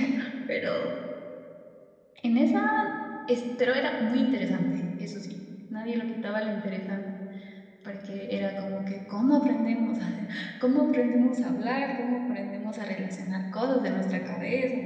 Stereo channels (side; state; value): both; identical; correlation 1.00